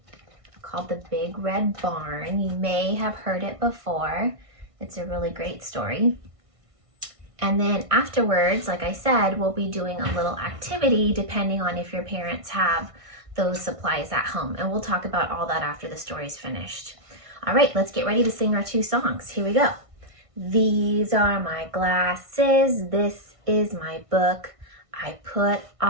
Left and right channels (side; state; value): left; late; 1.6 ms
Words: called The Big Red Barn. You may have heard it before. It's a really great story. And then afterwards, like I said, we'll be doing a little activity depending on if your parents have those supplies at home. And we'll talk about all that after the story's finished. All right, let's get ready to sing our two songs. Here we go. These are my glasses. This is my book. I put